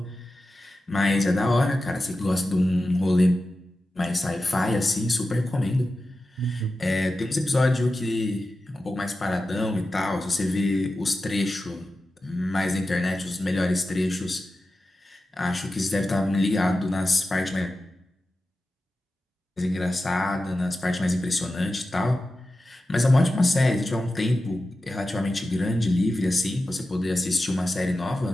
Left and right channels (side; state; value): both; normal; correlation 0.93